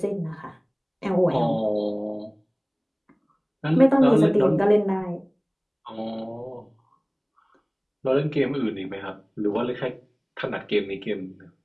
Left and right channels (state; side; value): identical; both; correlation 1.00